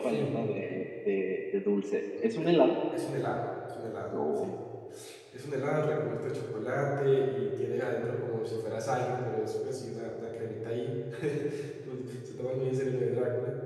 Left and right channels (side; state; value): both; identical; correlation 1.00